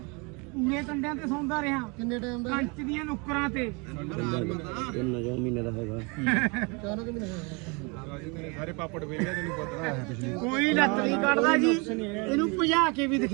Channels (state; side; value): quieter; left; 30.3 dB